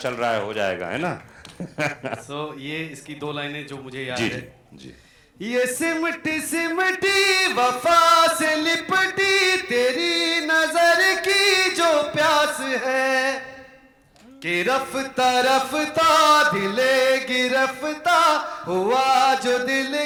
रहा है, हो जाएगा, है ना। ये इसकी दो लाइनें जो मुझे जी याद है। जी जी। ये सिमटी सिमटी वफा से लिपटी तेरी नजर की जो प्यास है, कि रफ्ता रफ्ता दिले गिरफ्ता हुआ जो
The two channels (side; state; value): both; identical; correlation 1.00